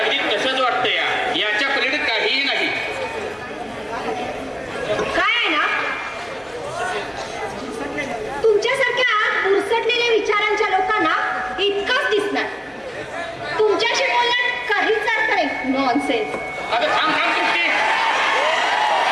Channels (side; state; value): both; identical; correlation 1.00